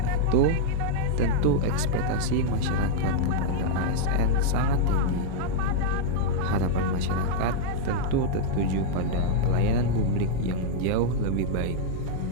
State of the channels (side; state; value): both; different; correlation -0.01